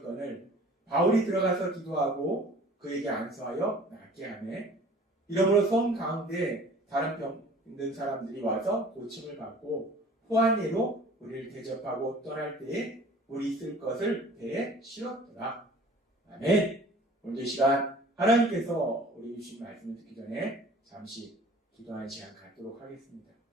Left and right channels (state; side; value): normal; both; correlation 0.48